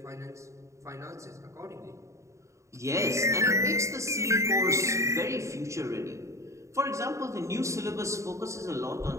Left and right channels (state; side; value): late; left; 0.14 ms